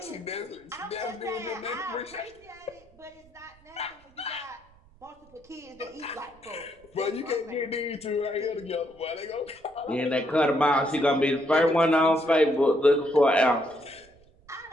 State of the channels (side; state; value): right; noise; rumble, 29 dB below the sound